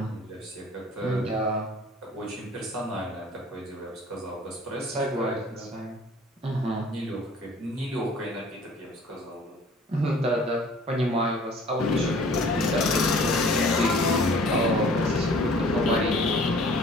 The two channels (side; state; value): both; normal; correlation 0.51